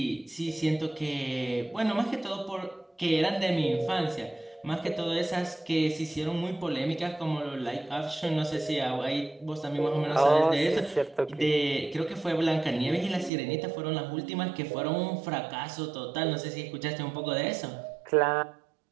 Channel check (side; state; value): left; drops out; at 13.3 s